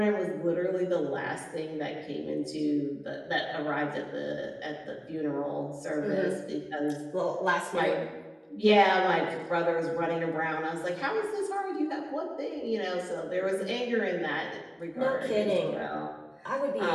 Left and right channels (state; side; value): identical; both; correlation 1.00